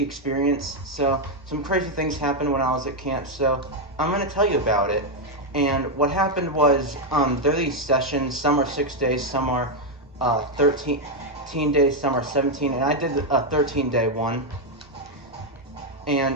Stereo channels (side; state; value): both; normal; correlation 0.02